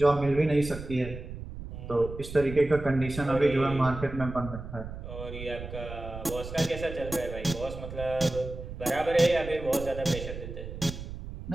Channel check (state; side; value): noise; right; rumble, 10 dB below the sound